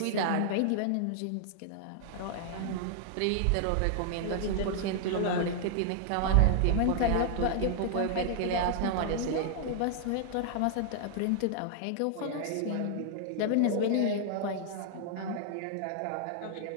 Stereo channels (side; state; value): both; different; correlation -0.01